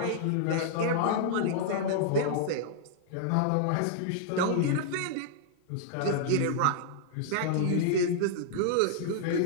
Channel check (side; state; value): both; different; correlation -0.01